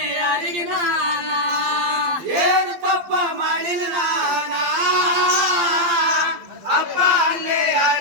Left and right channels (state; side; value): late; left; 12 ms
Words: ಯಾರಿಗೆ ನಾನ ಏನು ಪಾಪ ಮಾಡಿನಿ ನಾನ ಅಪ್ಪ ಅಲ್ಲೇ